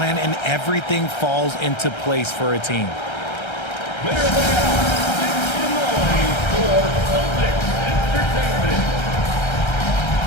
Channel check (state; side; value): late; right; 1.3 ms